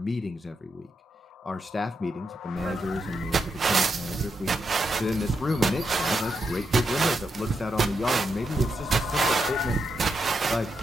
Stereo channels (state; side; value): normal; both; correlation 0.84